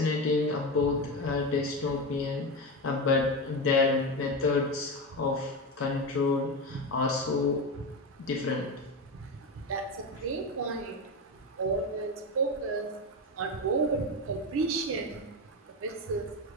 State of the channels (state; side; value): normal; both; correlation 0.18